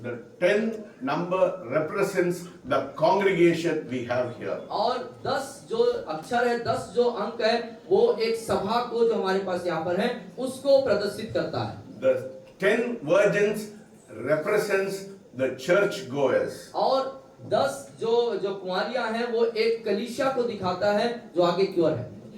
the 10 number represents the congregation we have here. और 10 जो अक्षर है, 10 जो अंक है, वो एक सभा को जो हमारे पास यहाँ पर है उसको प्रदर्शित करता है। The 10 virgins represents the church goers. और 10 जो कुंवारियां हैं वो एक कलीसिया को दिखाता है जो आगे की ओर है।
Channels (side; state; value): both; identical; correlation 1.00